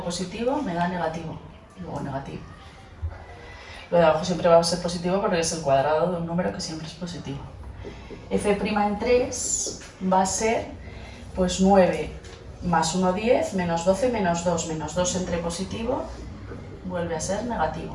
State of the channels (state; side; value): identical; both; correlation 1.00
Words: positivo me da negativo, luego negativo. Lo de abajo siempre va a ser positivo porque es el cuadrado de un número que siempre es positivo. F' en 3 va a ser pues 9 más 1, 10, menos 12, menos 2. Menos 2 entre positivo vuelve a ser negativo.